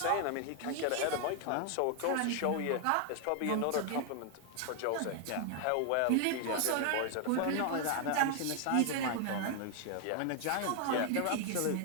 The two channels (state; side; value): different; both; correlation 0.00